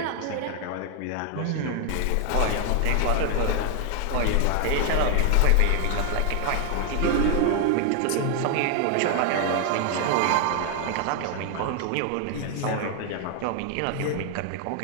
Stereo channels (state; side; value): different; both; correlation 0.00